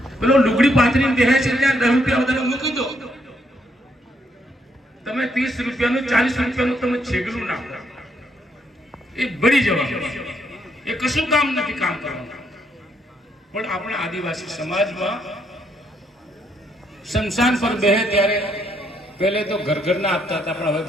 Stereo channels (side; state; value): both; normal; correlation 0.74